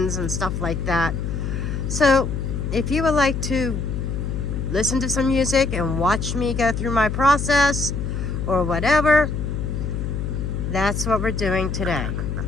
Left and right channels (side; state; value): left; noise; hum, 3 dB below the sound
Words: and stuff like that. So if you would like to listen to some music and watch me go through my process or whatever, that's what we're doing today.